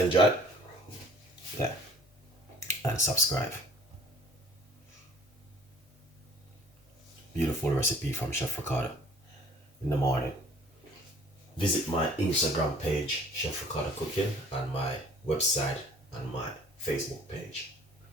yeah, and subscribe. Beautiful recipe from Chef Ricardo in the morning. Visit my Instagram page, Chef Ricardo Cooking, and my website and my Facebook page.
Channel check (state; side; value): normal; both; correlation 0.52